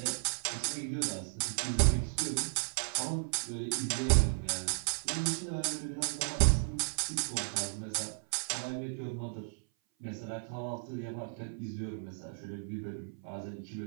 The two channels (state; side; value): silent; left; 55 dB below the other